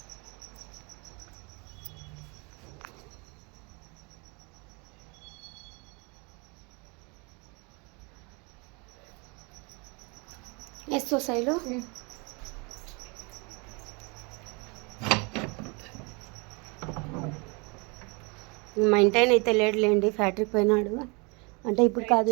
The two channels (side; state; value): left; quieter; 30.4 dB